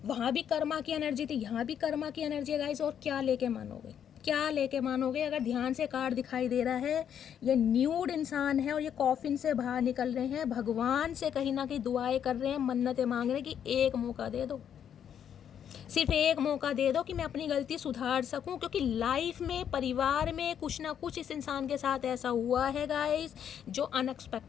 वहाँ भी कर्मा की एनर्जी थी, यहाँ भी कर्मा की एनर्जी है गाइस। और क्या लेके मानोगे, क्या लेके मानोगे? अगर ध्यान से कार्ड दिखाई दे रहा है, ये न्यूड इंसान है और ये कॉफिन से बाहर निकल रहे हैं, भगवान से कहीं ना कहीं दुआएं कर रहे हैं, मन्नतें मांग रहे हैं कि एक मौका दे दो, सिर्फ एक मौका दे दो कि मैं अपनी गलती सुधार सकूं। क्योंकि लाइफ में, परिवार में कुछ ना कुछ इस इंसान के साथ ऐसा हुआ है गाइस जो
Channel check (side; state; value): right; quieter; 8.9 dB